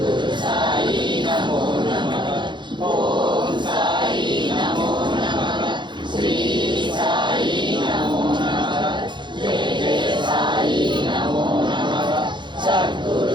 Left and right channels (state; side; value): late; left; 0.23 ms